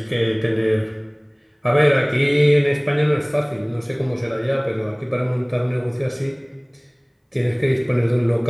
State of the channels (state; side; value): identical; both; correlation 1.00